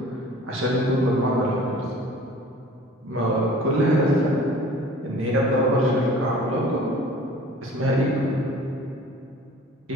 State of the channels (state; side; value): normal; both; correlation 0.46